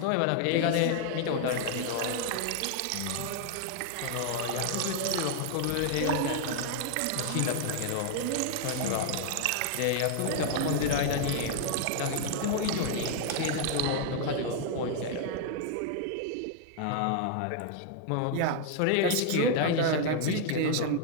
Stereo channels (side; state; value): both; different; correlation 0.00